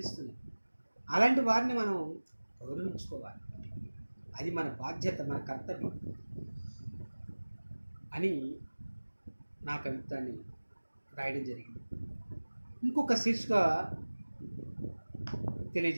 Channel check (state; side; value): inverted; both; correlation -1.00